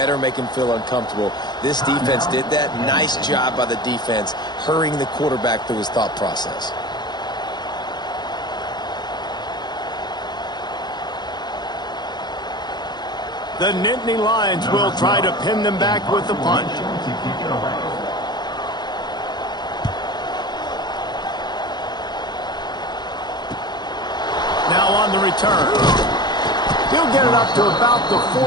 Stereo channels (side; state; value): right; late; 0.21 ms